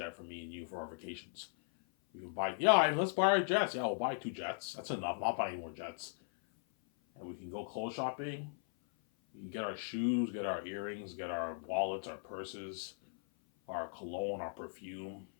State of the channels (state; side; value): silent; right; 52 dB below the other